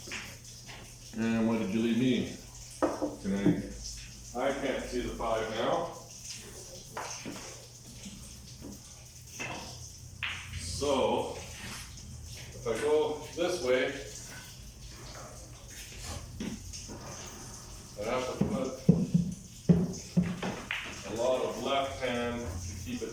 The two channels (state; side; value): identical; both; correlation 1.00